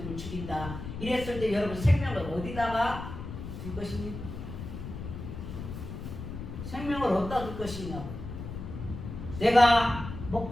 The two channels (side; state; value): left; noise; rumble, 9 dB below the sound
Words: 죽인다. 이랬을 때 여러분 생명을 어디다가 둘 것입니까? 생명을 어디다 둘 것이냐고. 내가